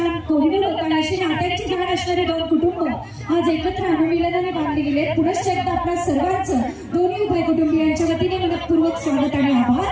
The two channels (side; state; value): both; identical; correlation 1.00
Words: कोहिनूर होता है. अशी नात्यांची जाण असणारे 2 कुटुंब आज एकत्र अनुमिलनाने बांधले गेले. पुनश्च एकदा आपल्या सर्वांचं दोन्ही उभय कुटुंबियांच्या वतीने मनपूर्वक स्वागत आणि